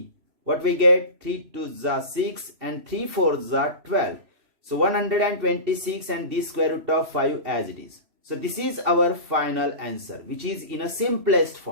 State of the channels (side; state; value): left; late; 3.0 ms